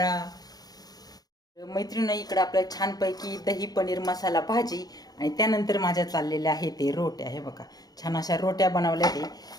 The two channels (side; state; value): right; late; 0.19 ms